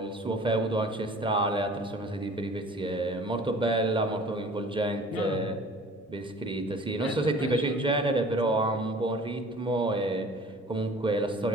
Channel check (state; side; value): normal; both; correlation 0.47